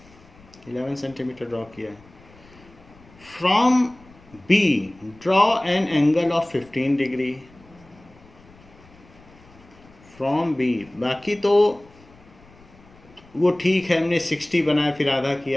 11 centimetre draw किया। From B draw an angle of 15 degree from B। बाकी तो वो ठीक है, हमने 60 बनाया, फिर आधा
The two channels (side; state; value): left; noise; rumble, 25 dB below the sound